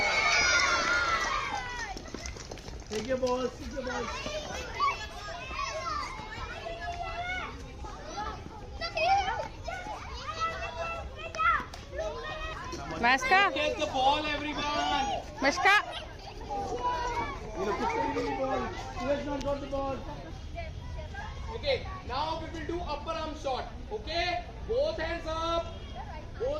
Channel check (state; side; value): identical; both; correlation 1.00